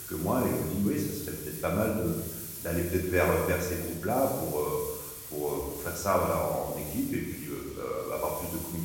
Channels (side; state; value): both; identical; correlation 1.00